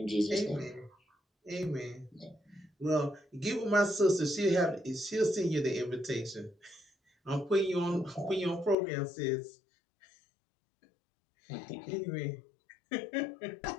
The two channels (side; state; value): right; drops out; at 8.8 s